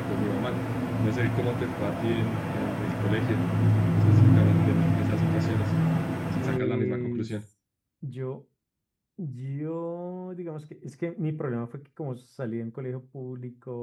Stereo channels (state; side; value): identical; both; correlation 1.00